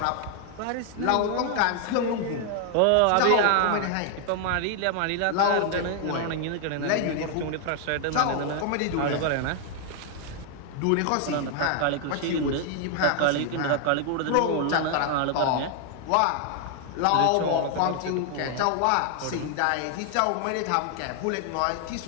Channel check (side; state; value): both; different; correlation 0.00